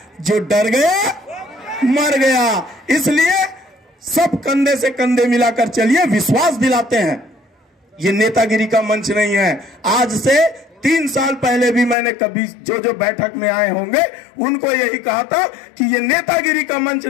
जो डर गया मर गया। इसलिए सब कंधे से कंधे मिलाकर चलिए, विश्वास दिलाते हैं। ये नेतागिरी का मंच नहीं है। आज से 3 साल पहले भी मैंने कभी जो बैठक में आए होंगे उनको यही कहा था कि ये नेतागिरी का मंच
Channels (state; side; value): drops out; right; at 12.0 s